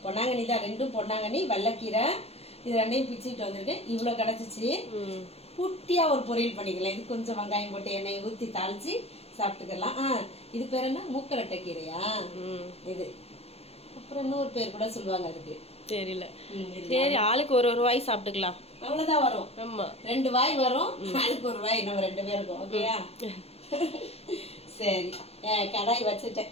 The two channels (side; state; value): right; late; 0.29 ms